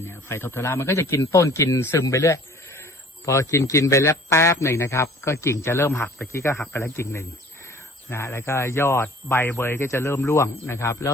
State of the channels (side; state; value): both; normal; correlation 0.50